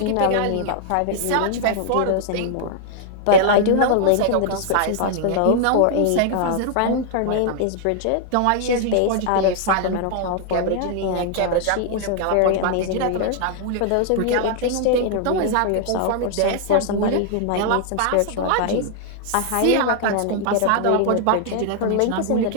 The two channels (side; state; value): both; different; correlation -0.01